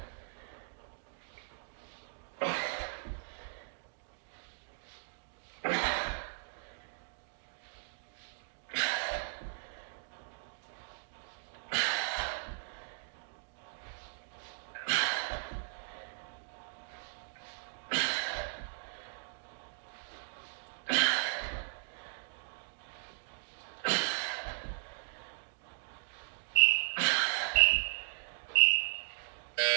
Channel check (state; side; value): silent; left; digital silence